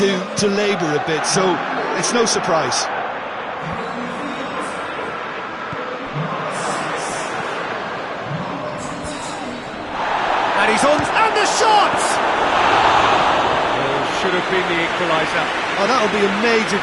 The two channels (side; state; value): both; identical; correlation 1.00